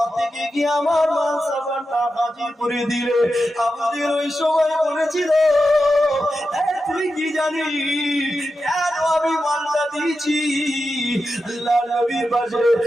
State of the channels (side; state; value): both; normal; correlation 0.90